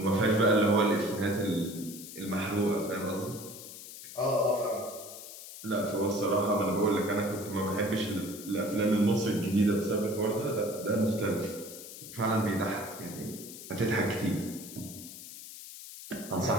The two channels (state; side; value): noise; left; hiss, 13 dB below the sound